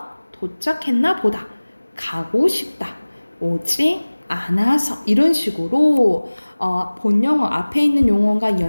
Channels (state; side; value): inverted; both; correlation -1.00